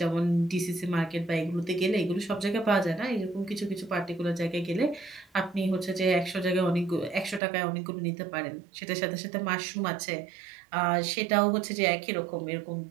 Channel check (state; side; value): drops out; left; at 7.4 s